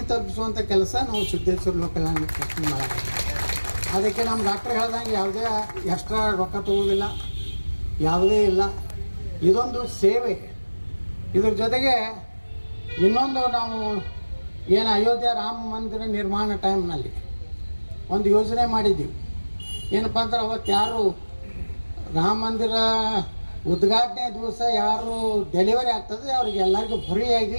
ತಲುಪಿಸುವಂಥ ಕೆಲಸ ನಾವು ಸಿದ್ದೇಶ್ವರ ಲೋಕಲ್ ಮಾಡೋದು. ಅದಕ್ಕೆ ನಮ್ಮ ಡಾಕ್ಟ್ರ್ ಹೇಳ್ದಂಗೆ ಯಾವುದೇ ಎಕ್ಸ್ಟ್ರಾ ರೊಕ್ಕ ತಗೋದಿಲ್ಲ, ಯಾವುದೇ ಇಲ್ಲ. ಇದೊಂದು ಸೇವೆ. ಇದ್ರ ಜೊತೆಗೆ ಇನ್ನೊಂದು ನಾವು ಏನು ಅಯೋಧ್ಯೆ ರಾಮ ಮಂದಿರ ನಿರ್ಮಾಣ ಟೈಮ್ನಲ್ಲಿ ಒಂದು ಯೋಜನೆ ಮಾಡಿದ್ದೀವಿ. ಏನಪ್ಪ ಅಂದ್ರೆ ಅವತ್ತು ಯಾರು ರಾಮ ಮಂದಿರ ಉದ್ಘಾಟನೆ ದಿವಸ ಯಾರು ಡೆಲಿವರಿ ಆಗ್ತದೆ ಅವ್ರಿಗೆ ಎಲ್ಲರಿಗೂ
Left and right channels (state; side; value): inverted; both; correlation -1.00